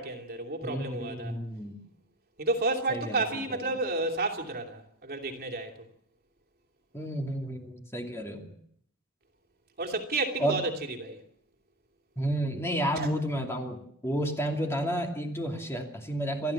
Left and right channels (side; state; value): both; normal; correlation 0.30